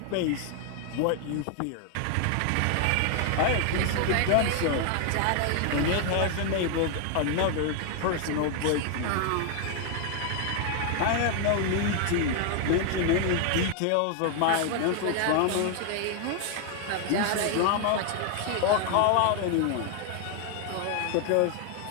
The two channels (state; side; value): different; both; correlation 0.00